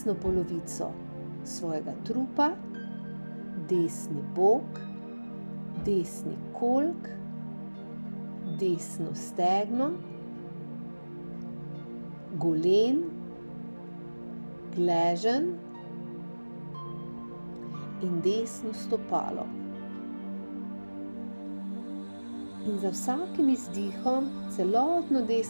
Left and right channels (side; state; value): both; inverted; correlation -1.00